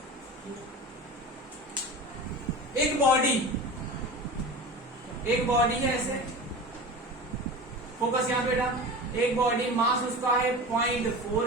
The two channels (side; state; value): both; normal; correlation 0.32